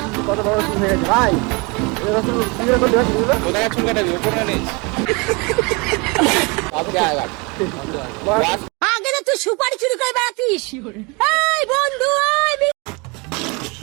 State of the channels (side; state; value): left; quieter; 28.8 dB